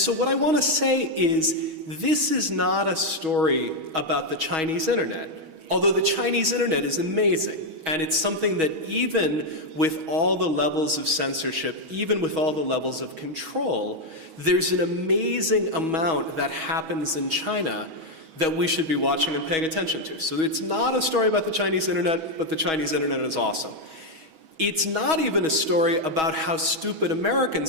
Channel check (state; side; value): late; left; 6.3 ms